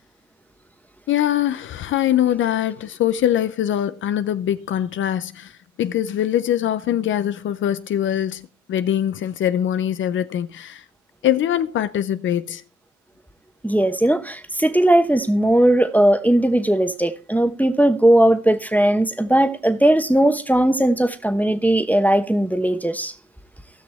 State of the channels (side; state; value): both; normal; correlation 0.72